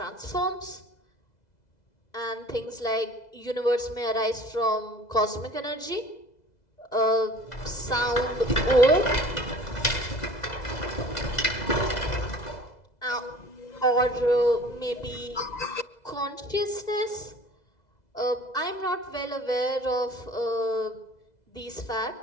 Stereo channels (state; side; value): late; right; 2.0 ms